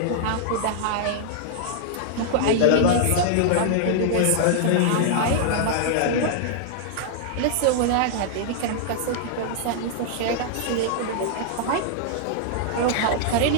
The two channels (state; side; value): different; both; correlation -0.01